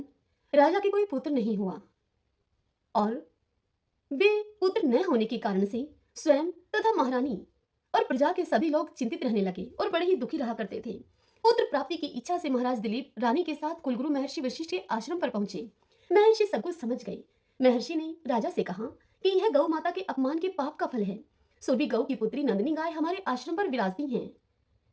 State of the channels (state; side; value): identical; both; correlation 1.00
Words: राजा के कोई पुत्र नहीं हुआ और वे पुत्र न होने के कारण से स्वयं तथा महारानी और प्रजा के सभी लोग चिंतित रहने लगे और बड़े ही दुखी रहा करते थे। पुत्र प्राप्ति की इच्छा से महाराज दिलीप रानी के साथ कुलगुरु महर्षि वशिष्ठ के आश्रम पर पहुंचे। महर्षि सब कुछ समझ गए। महर्षि ने राजा से कहा कि यह गौ माता के अपमान के पाप का फल है, सो भी गौ की पुत्री नंदिनी गाय हमारे आश्रम पर विराजती हैं।